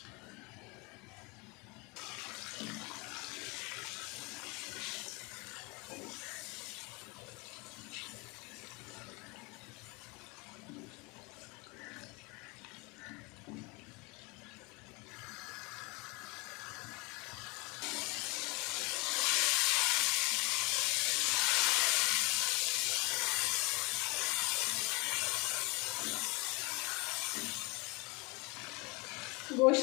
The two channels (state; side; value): quieter; right; 27.5 dB